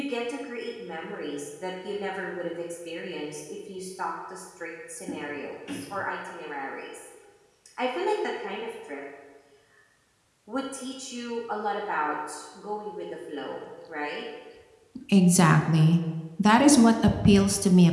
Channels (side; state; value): both; identical; correlation 1.00